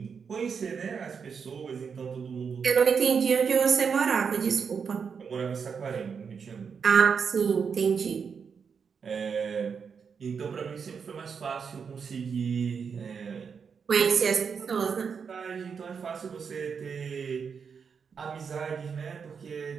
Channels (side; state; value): left; quieter; 6.2 dB